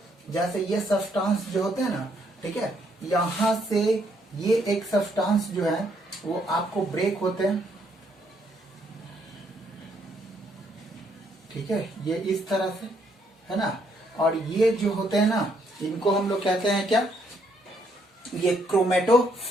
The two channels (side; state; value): both; normal; correlation 0.71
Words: जैसे ये सब्सटेंस जो होते हैं ना, ठीक है, यहां से ये एक सब्सटेंस जो है वो आपको ब्रेक होते हैं, ठीक है, ये इस तरह से है ना। और ये जो होते हैं ना, इनको हम लोग कहते हैं क्या, ये